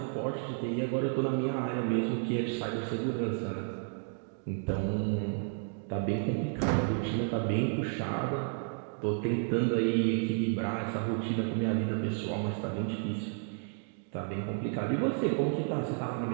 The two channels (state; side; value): silent; left; 56 dB below the other